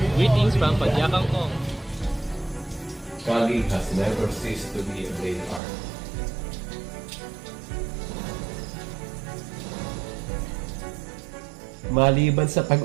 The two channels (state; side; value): drops out; left; at 5.6 s